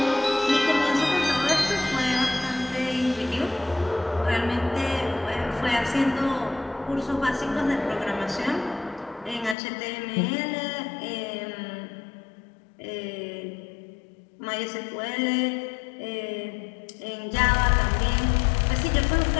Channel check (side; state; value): right; drops out; at 9.6 s